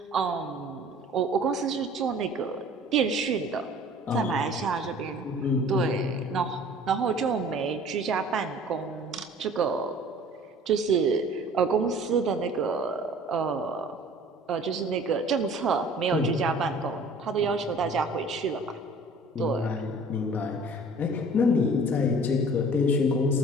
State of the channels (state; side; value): normal; both; correlation 0.48